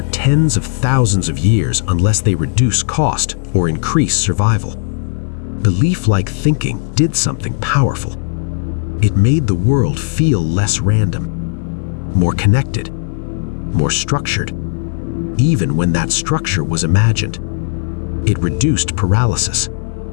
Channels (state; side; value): silent; right; 58 dB below the other